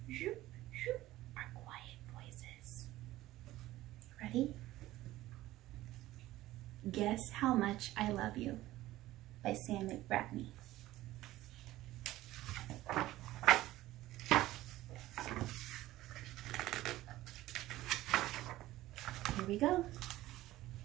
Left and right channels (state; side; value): quieter; left; 16.1 dB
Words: Our quiet voices. Ready? Guess How Much I Love You by Sam McBratney. Here we go.